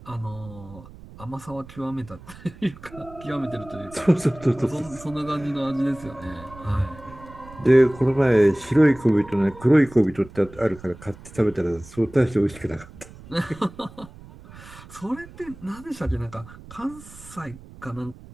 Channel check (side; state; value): right; noise; rumble, 19 dB below the sound